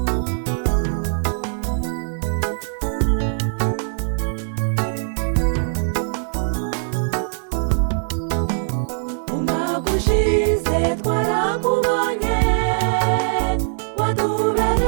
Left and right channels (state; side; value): silent; left; digital silence